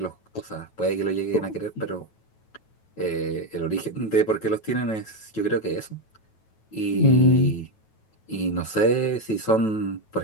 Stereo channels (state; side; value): late; right; 9.2 ms